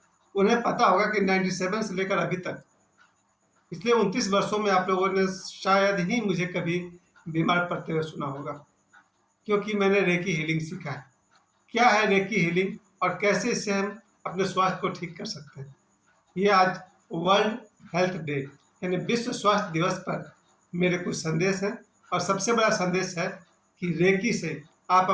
उन्हें पता होगा कि 97 से लेकर अभी तक पिछले 29 वर्षों में आप लोगों ने शायद ही मुझे कभी बीमार पड़ते हुए सुना होगा, क्योंकि मैंने रेकी हीलिंग सीखा है। क्या है रेकी हीलिंग और कैसे इससे हम अपने स्वास्थ्य को ठीक कर सकते हैं? ये आज वर्ल्ड हेल्थ डे यानी विश्व स्वास्थ्य दिवस पर मेरे कुछ संदेश हैं। और सबसे बड़ा संदेश है कि रेकी से आप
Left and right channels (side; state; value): both; identical; correlation 1.00